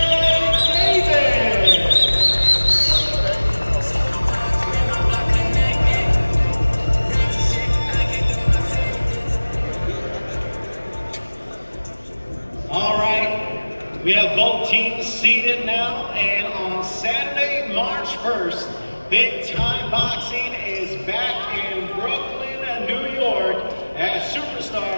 We have both teams seated now, and on Saturday, March 1st, Big Time Boxing is back in Brooklyn, New York, as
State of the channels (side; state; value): both; inverted; correlation -1.00